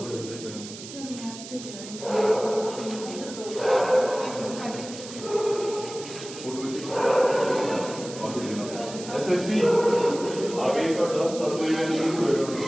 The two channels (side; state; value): right; noise; hiss, 13 dB below the sound